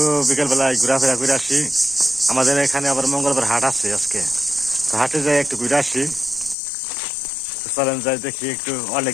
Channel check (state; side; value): drops out; right; at 6.6 s